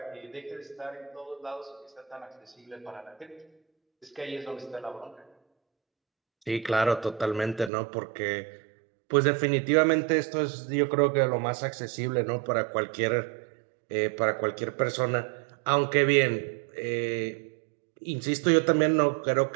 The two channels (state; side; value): drops out; left; at 7.7 s